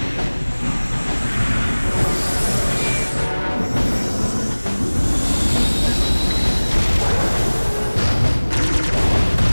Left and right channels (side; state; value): both; inverted; correlation -1.00